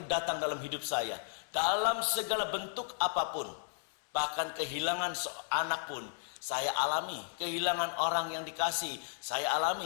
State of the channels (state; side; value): silent; right; 55 dB below the other